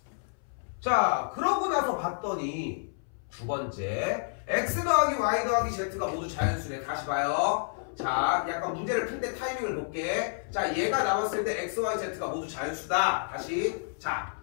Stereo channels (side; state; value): right; silent; 58 dB below the other